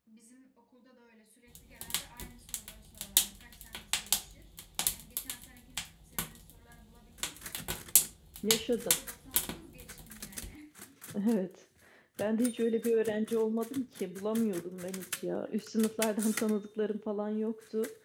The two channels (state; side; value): identical; both; correlation 1.00